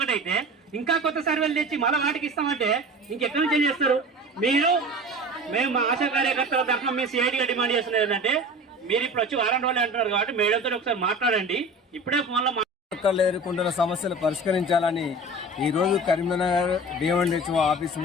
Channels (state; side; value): normal; both; correlation 0.36